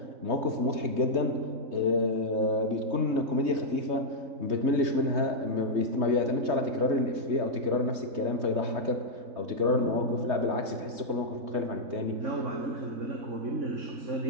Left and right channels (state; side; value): late; left; 3.2 ms